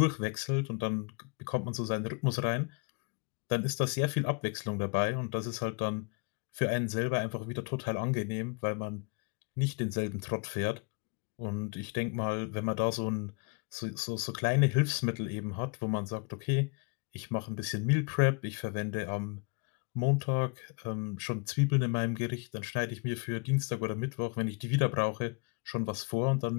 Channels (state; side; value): quieter; right; 32.2 dB